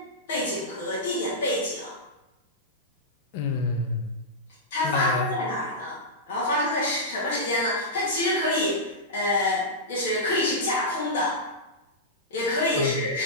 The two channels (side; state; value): both; normal; correlation -0.12